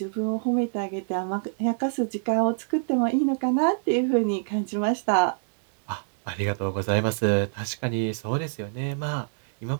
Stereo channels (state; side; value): silent; left; digital silence